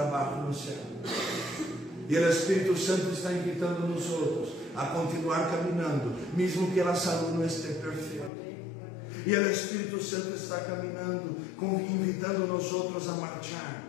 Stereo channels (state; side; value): drops out; right; at 8.3 s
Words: no céu. E o Espírito Santo está invitando nós outros a continuar caminhando, mesmo que a saúde não esteja perfeita. E o Espírito Santo está caminhando, invitando nós outros a marchar